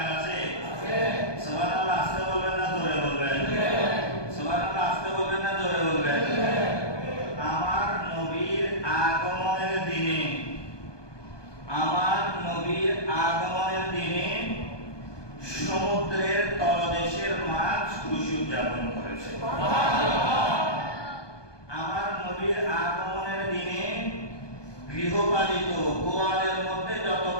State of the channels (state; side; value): late; right; 1.2 ms